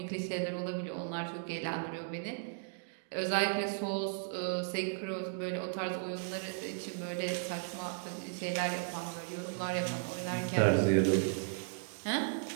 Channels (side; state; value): left; silent; digital silence